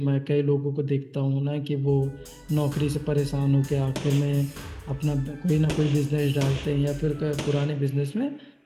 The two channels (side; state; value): both; identical; correlation 1.00